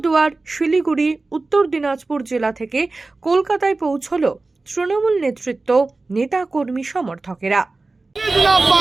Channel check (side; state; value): left; quieter; 3.4 dB